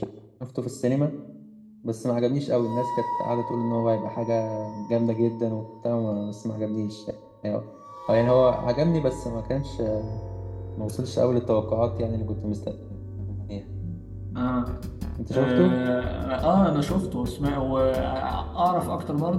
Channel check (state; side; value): identical; both; correlation 1.00